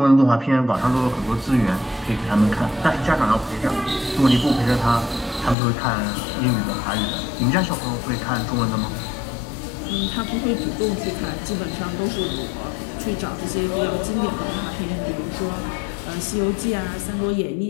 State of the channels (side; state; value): right; drops out; at 5.6 s